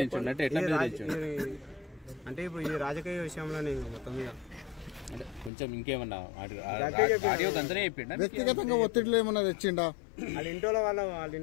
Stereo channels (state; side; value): drops out; right; at 5.5 s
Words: అంటే ఇప్పుడు ఈ రాజకీయ విషయంలో నేను మొత్తం మీద అంటే కొంచెం ఇంకేమన్నా ఆడియో గంతనే చెప్పిండా? వ్యక్తిగతంగా ఒత్తిడిలో ఏమన్నా తెచ్చిండా? వాళ్ళ